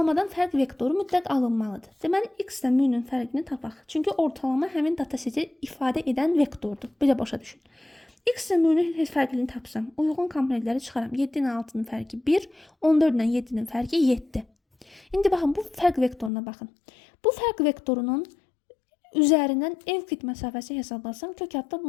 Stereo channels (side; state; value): right; drops out; at 16.3 s